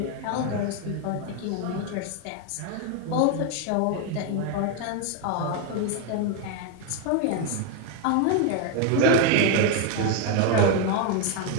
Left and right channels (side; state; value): both; different; correlation 0.01